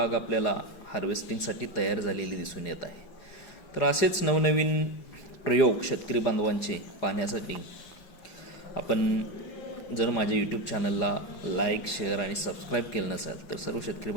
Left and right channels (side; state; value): right; late; 4.9 ms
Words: आपल्याला हार्वेस्टिंगसाठी तयार झालेली दिसून येत आहे. तर असेच नवनवीन प्रयोग शेतकरी बांधवांचे पाहण्यासाठी आपण जर माझ्या यूट्यूब चॅनलला लाईक, शेअर आणि सबस्क्राईब केलं नसेल तर सर्व शेतकरी